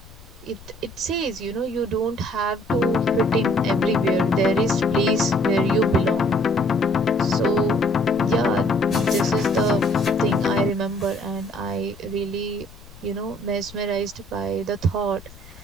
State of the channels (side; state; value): left; noise; rumble, 21 dB below the sound